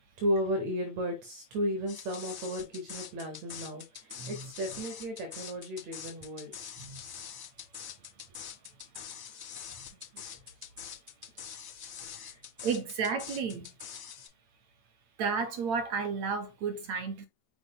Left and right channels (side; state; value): left; late; 8.8 ms